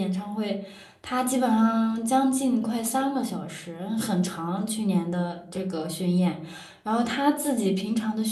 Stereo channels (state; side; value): identical; both; correlation 1.00